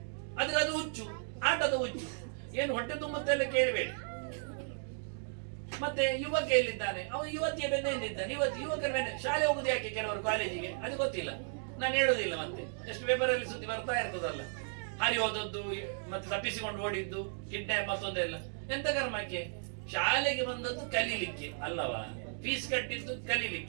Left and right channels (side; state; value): left; silent; digital silence